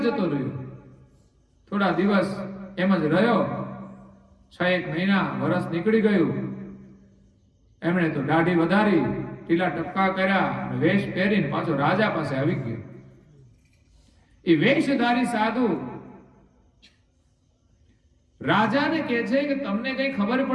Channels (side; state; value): both; identical; correlation 1.00